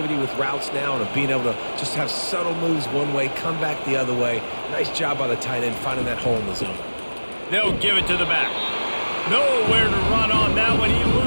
with routes now and of being able to just have subtle moves one way, come back the other way. Nice job by the tight end finding that hole in the zone. They'll give it to the back. Nowhere to run on that one. He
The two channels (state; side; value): inverted; both; correlation -1.00